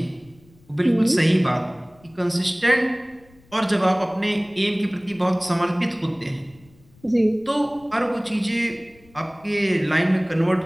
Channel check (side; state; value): left; noise; rumble, 29 dB below the sound